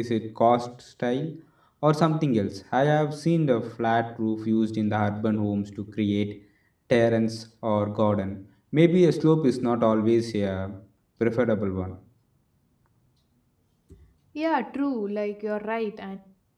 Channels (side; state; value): both; identical; correlation 1.00